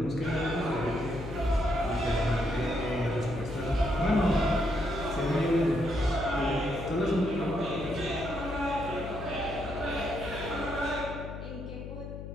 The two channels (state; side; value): noise; left; hum, 9 dB below the sound